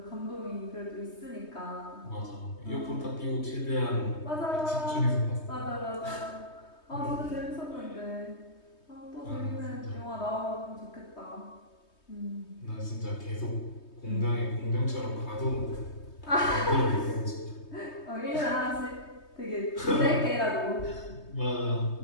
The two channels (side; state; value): right; late; 3.2 ms